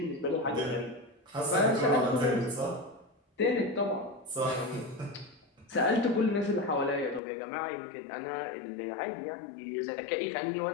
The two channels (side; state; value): right; drops out; at 7.2 s